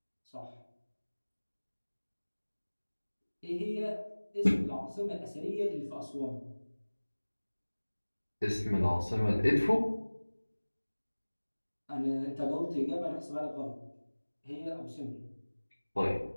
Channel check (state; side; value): inverted; both; correlation -1.00